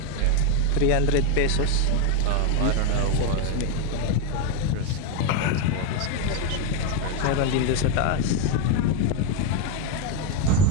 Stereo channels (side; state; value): both; different; correlation 0.02